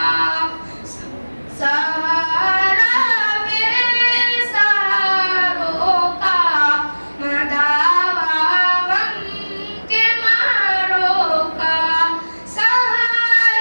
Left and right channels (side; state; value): both; inverted; correlation -1.00